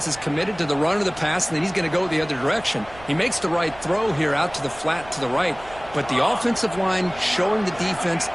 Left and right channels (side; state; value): right; noise; rumble, 20 dB below the sound